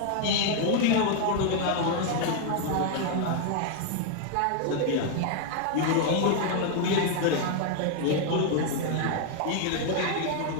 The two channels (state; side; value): different; both; correlation 0.00